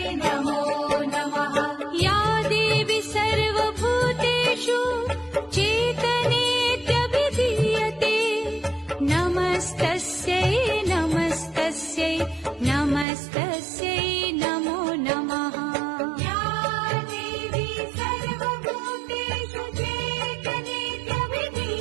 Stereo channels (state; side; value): drops out; left; at 13.1 s